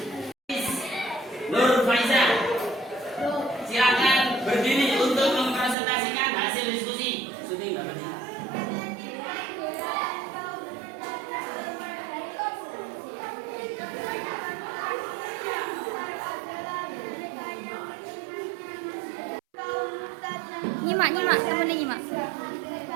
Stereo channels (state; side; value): drops out; left; at 5.8 s